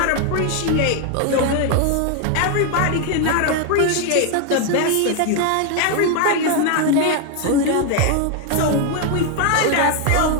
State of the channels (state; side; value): different; both; correlation 0.00